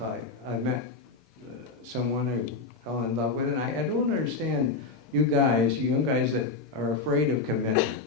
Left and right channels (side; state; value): right; quieter; 4.0 dB